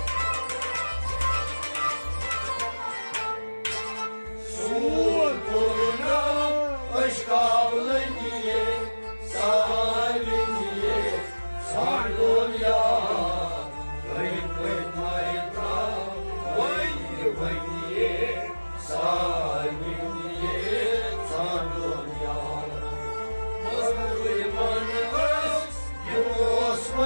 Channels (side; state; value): both; inverted; correlation -1.00